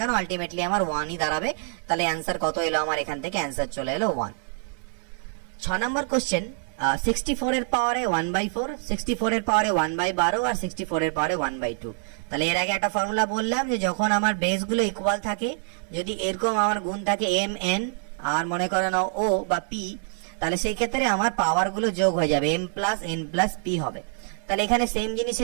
আলটিমেটলি আমার 1ই দাঁড়াবে। তাহলে অ্যান্সার কত এলো আমার? এখান থেকে অ্যান্সার চলে এলো 1। 6 নম্বর কোশ্চেন, 64 এর পাওয়ারে 1/4, 64 এর পাওয়ারে 1/12 আর 64 এর পাওয়ারে 1/2। তাহলে এর আগে একটা ফর্মুলা বললাম যে যখন আমার বেস গুলো ইকুয়াল থাকে, যদি এরকম আমার গুণ থাকে m n আর মনে করো না o বা p, তাহলে সেই ক্ষেত্রে আমার পাওয়ার গুলো যোগ হয়ে যাবে, m + n + p হবে। তাহলে এখানে সেম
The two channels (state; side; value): silent; left; 61 dB below the other